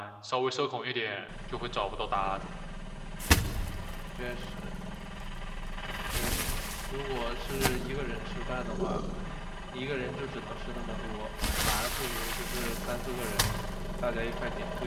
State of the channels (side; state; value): both; identical; correlation 1.00